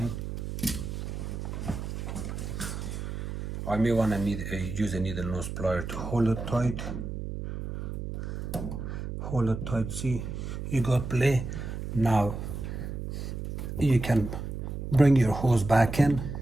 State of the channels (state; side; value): noise; right; hum, 6 dB below the sound